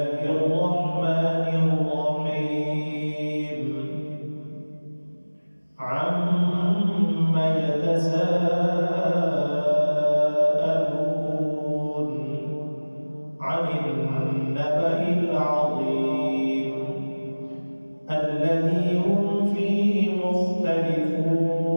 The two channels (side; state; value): both; inverted; correlation -1.00